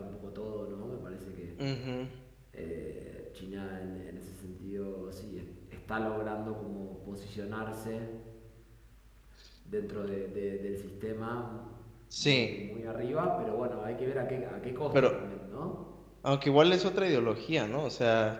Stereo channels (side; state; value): both; identical; correlation 1.00